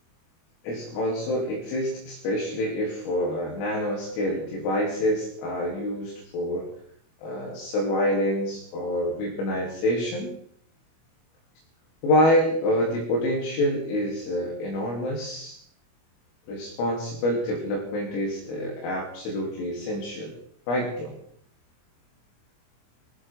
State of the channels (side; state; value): right; late; 25 ms